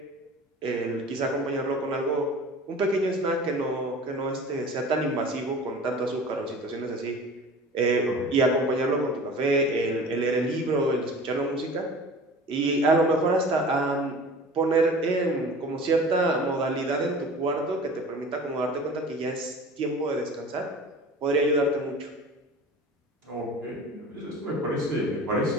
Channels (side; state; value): both; normal; correlation 0.40